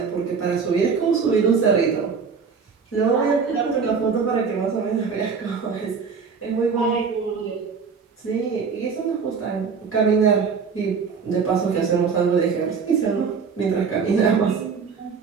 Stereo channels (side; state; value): left; quieter; 5.6 dB